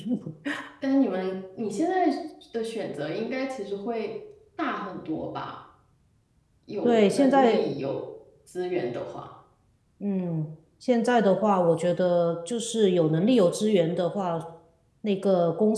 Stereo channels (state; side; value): identical; both; correlation 1.00